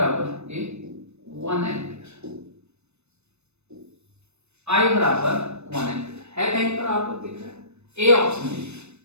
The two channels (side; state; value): left; late; 0.81 ms